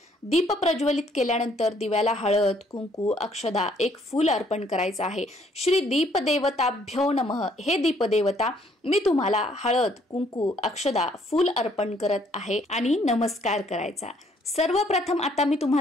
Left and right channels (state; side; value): normal; both; correlation 0.65